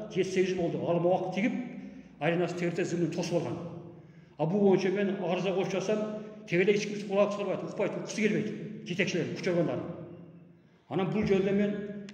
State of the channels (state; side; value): identical; both; correlation 1.00